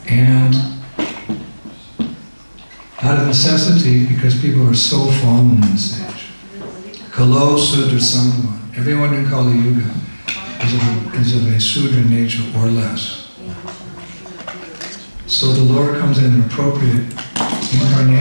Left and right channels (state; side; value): inverted; both; correlation -1.00